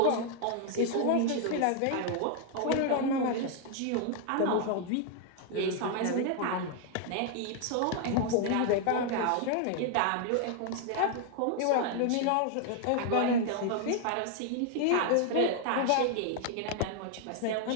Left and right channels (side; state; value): both; different; correlation 0.00